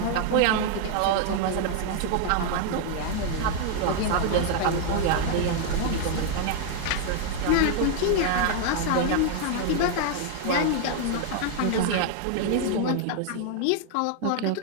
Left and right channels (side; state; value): both; different; correlation 0.00